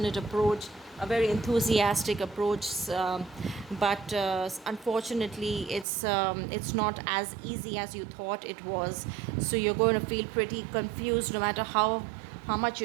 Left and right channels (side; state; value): left; drops out; at 5.9 s